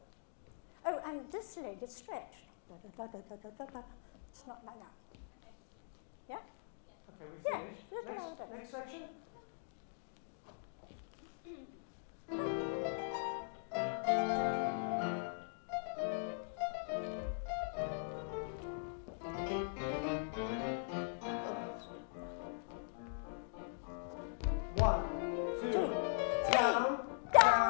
Oh, and this leg is stretched. Da-da-da-da-da-da-da. It's not like that. Yeah? Okay, we Yeah, finished. look Next, at that. next section. One, two, down,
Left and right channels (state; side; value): silent; right; digital silence